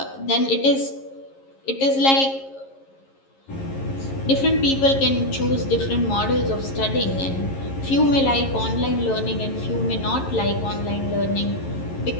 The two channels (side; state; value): right; late; 11 ms